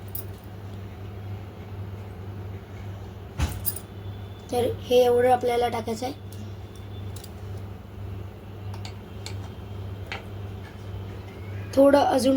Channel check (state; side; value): identical; both; correlation 1.00